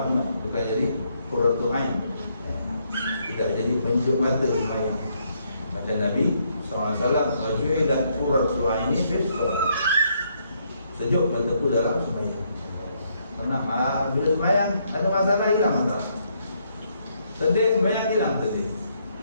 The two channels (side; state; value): both; inverted; correlation -0.73